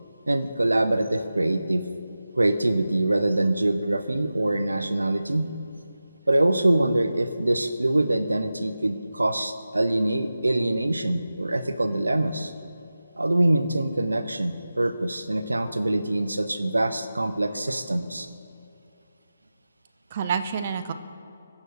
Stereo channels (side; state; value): both; inverted; correlation -0.94